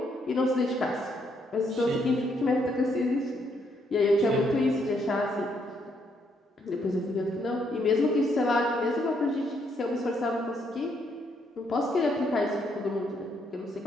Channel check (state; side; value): normal; both; correlation 0.73